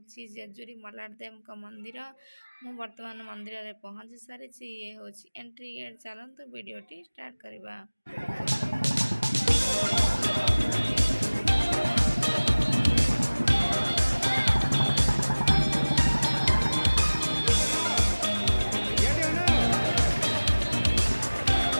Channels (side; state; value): both; inverted; correlation -1.00